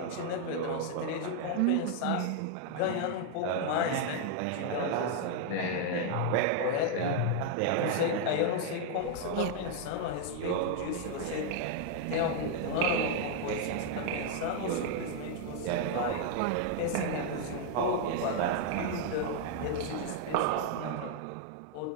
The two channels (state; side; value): different; both; correlation 0.00